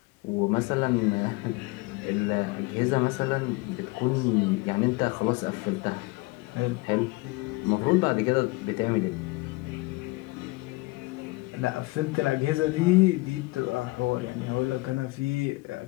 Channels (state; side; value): quieter; right; 23.6 dB